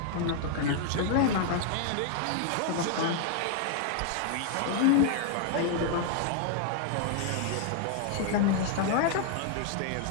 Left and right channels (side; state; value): both; different; correlation 0.00